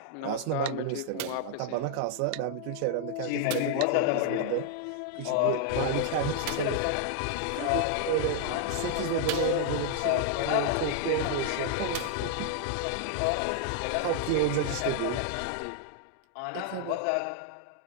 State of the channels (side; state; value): both; different; correlation 0.00